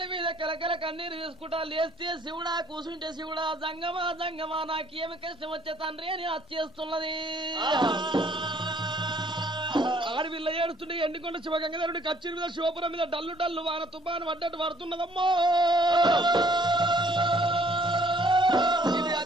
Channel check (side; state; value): both; normal; correlation 0.61